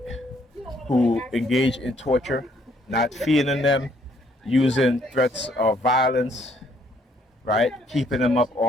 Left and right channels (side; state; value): both; normal; correlation 0.67